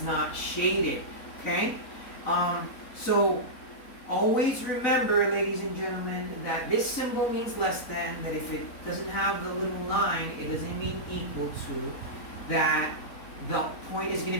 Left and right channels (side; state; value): right; late; 4.0 ms